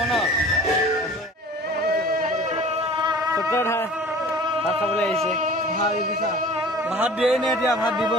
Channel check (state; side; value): normal; both; correlation 0.44